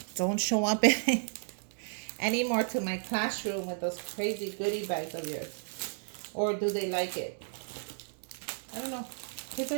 don't show up anymore to my classroom with those crazy goodie bags of yours. Or do they like it? I don't know. Kids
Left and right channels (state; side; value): silent; left; digital silence